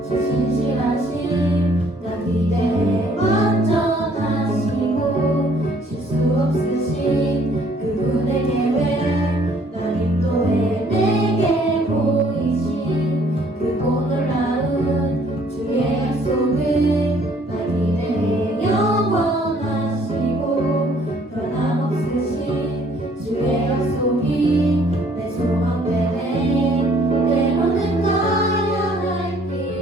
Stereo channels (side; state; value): both; normal; correlation 0.61